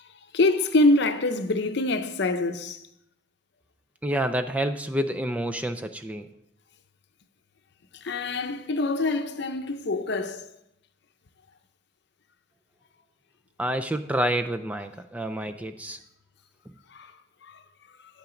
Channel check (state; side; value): normal; both; correlation 0.42